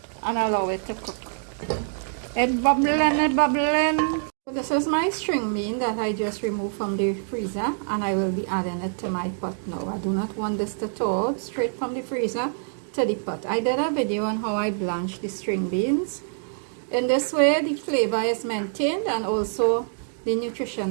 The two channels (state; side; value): silent; left; digital silence